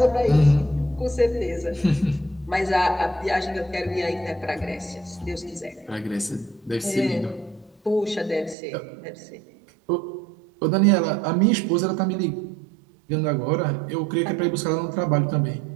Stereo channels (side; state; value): left; drops out; at 8.6 s